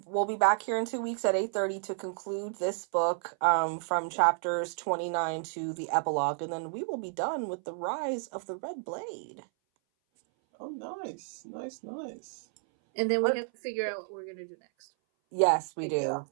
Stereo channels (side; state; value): left; silent; 57 dB below the other